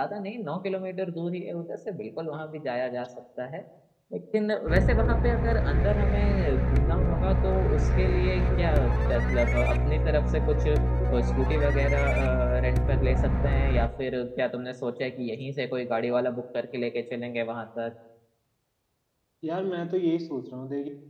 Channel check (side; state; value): both; identical; correlation 1.00